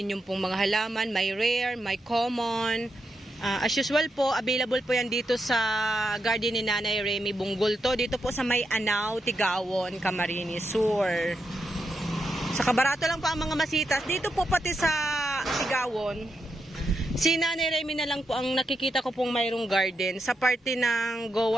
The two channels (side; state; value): both; normal; correlation 0.84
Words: pong mga halaman. May rare, may common. As usual po, available po yan dito sa garden ni Nanay Remy Bunggulto. Dito po sa May Anaw, Tigawon, Camarines Sur. Sa kabarato lang po ang mga masitas. Dito po pati sa Tigawon. Si Nanay Remy na lang po ang nakikita ko pong mayroong garden sa parte ng